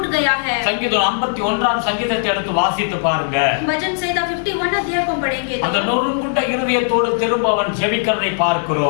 गया है। சங்கீதம் 51 சங்கீதத்தை எடுத்து வாசித்து பாருங்க. वचन संहिता 51 अध्याय को पढ़ेंगे அந்த तो நொறுங்குண்ட இருதயத்தோடு திரும்ப அவன் ஜெபிக்கிறதை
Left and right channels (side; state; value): right; silent; 67 dB below the other